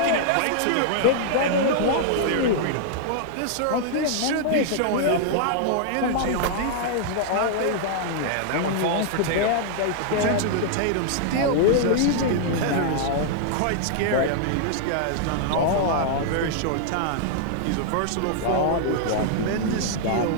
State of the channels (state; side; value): different; both; correlation -0.01